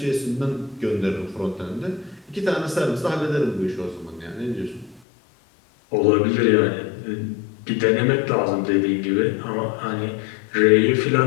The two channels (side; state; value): right; drops out; at 5.0 s